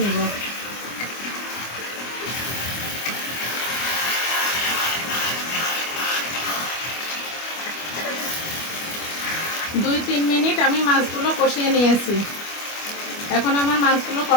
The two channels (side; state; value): right; late; 25 ms